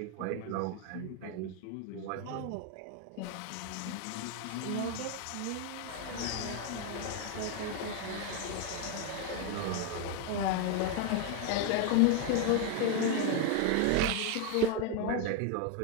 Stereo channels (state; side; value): different; both; correlation 0.01